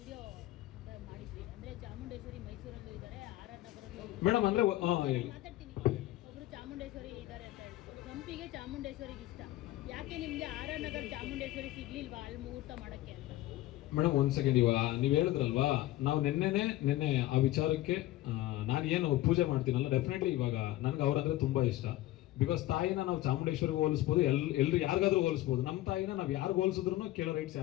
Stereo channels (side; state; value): right; quieter; 16.0 dB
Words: ಮಾಡಿದ್ರಿ, ಅಂದ್ರೆ ಚಾಮುಂಡೇಶ್ವರಿ ಮೈಸೂರಲ್ಲೂ ಇದ್ದಾರೆ, ಆರ್.ಆರ್. ನಗರಲ್ಲೂ ಮೇಡಮ್ ಅಂದ್ರೆ ಮಾತಾಡ್ತೀನಿ. ಒಬ್ರು ಚಾಮುಂಡೇಶ್ವರಿ ಇದ್ದಾರೆ ಅಂತ ಹೇಳ್ತಾರೆ. ಸಂಪಿಗೆ ಚಾಮುಂಡೇಶ್ವರಿಗೆ ಇಷ್ಟ. ಯಾಕೆ ನಿಮ್ಗೆ ಆರ್.ಆರ್. ನಗರ ಚಾಮುಂಡೇಶ್ವರಿ ಸಿಗ್ಲಿಲ್ವಾ ಅಲ್ಲಿ ಮುಹೂರ್ತ ಮಾಡಕ್ಕೆ ಅಂತ? ಮೇಡಮ್ ಒಂದ್ ಸೆಕೆಂಡ್, ಇವಾಗ ನೀವ್ ಹೇಳಿದ್ರಲ್ವಾ, ನಾವು ನಿನ್ನೆ ಆ ವಿಚಾರಕ್ಕೆ ನಾನು ಏನು ಪೂಜೆ ಮಾಡ್ತೀನಲ್ಲ, ಡೆಫಿನೆಟ್ಲಿ ಇವಾಗ ನನ್ಗೆ ಅವ್ರಂದ್ರೆ ತುಂಬಾ ಇಷ್ಟ. ಬಿಕಾಸ್ ತಾಯಿನ ನಾವು ಚಾಮುಂಡೇಶ್ವರಿಗೆ ಹೋಲಿಸ್ಬೋದು, ಎಲ್ರು ಯಾರಿಗಾದ್ರೂ ಹೋಲಿಸ್ಬೋದು. ನಮ್ಮ ತಾಯಿನ ನಾವು ಯಾರಿಗೂ ಹೋಲಿಸಿದ್ರು ಕೇಳೋ ರೈಟ್ಸ್